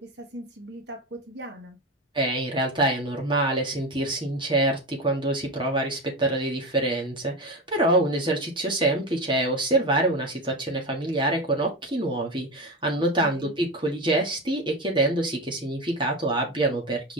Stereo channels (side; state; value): both; normal; correlation 0.20